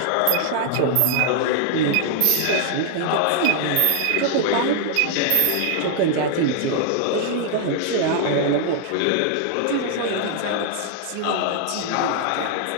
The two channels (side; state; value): both; different; correlation 0.00